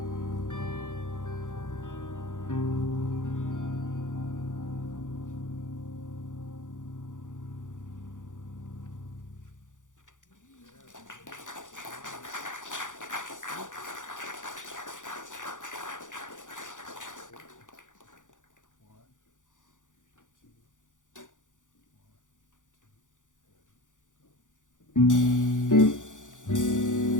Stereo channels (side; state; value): right; late; 0.87 ms